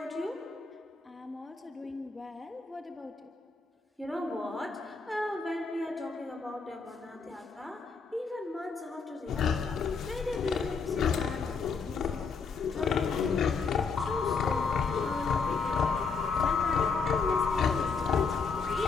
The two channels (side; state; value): right; quieter; 5.0 dB